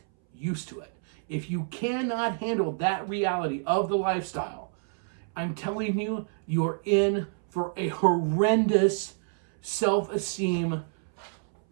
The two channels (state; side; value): silent; left; 59 dB below the other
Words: used to it. If you cannot handle that reality of the lifestyle, I'm telling you, you're in for a horrendous self-esteem